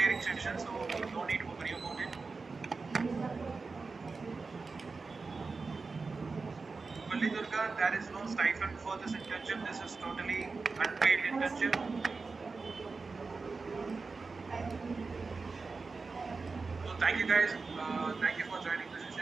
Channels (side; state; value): left; quieter; 4.2 dB